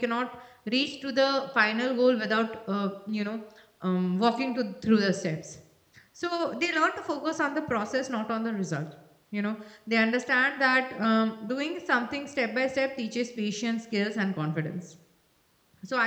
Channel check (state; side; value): identical; both; correlation 1.00